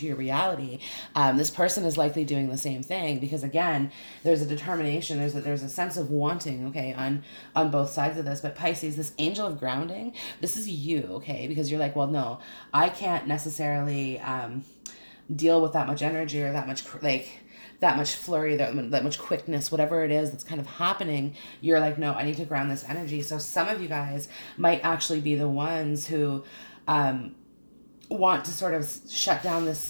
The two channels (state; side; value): inverted; both; correlation -1.00